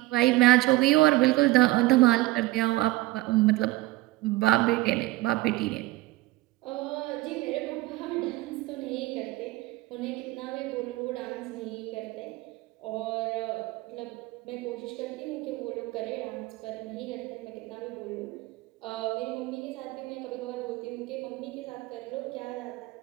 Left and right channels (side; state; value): left; quieter; 18.9 dB